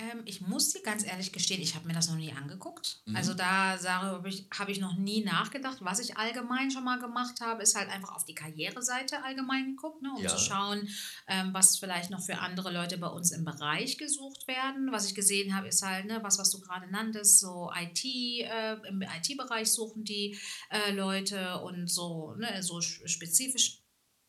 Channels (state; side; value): identical; both; correlation 1.00